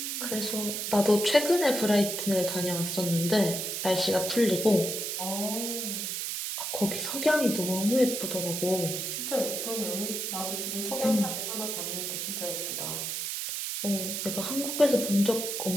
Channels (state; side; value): noise; right; hiss, 3 dB below the sound